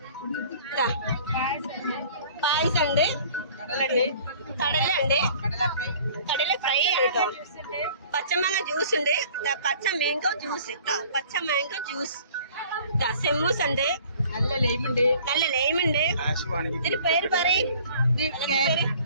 ഇതാ പായസം ഉണ്ട്, കടല ഉണ്ട്, കടല ഫ്രൈ ആണ് കേട്ടോ. പച്ചമാങ്ങ ജ്യൂസ് ഉണ്ട്, പച്ച മാംഗോ ജ്യൂസ് കേട്ടോ, പച്ച മാംഗോ ജ്യൂസ്. സെമ്മൂസ് ഉണ്ട്, നല്ല ലൈമുണ്ട്. ഇതിന് പേര് പറയും, കേക്ക്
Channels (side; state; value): both; inverted; correlation -0.51